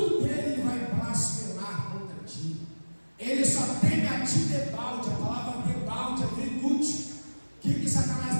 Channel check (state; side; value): inverted; both; correlation -1.00